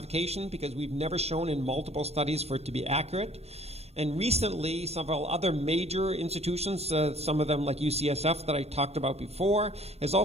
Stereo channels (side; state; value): left; late; 0.30 ms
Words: because we've never shown in multiple studies for it to be accurate. And recently, several other major institutions, some of them like UCSF that I talked about before, has